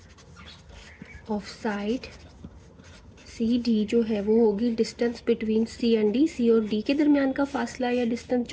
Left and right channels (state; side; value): identical; both; correlation 1.00